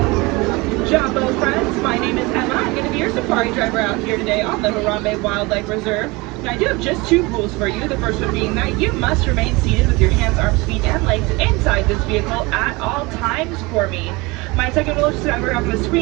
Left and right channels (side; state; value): left; quieter; 24.2 dB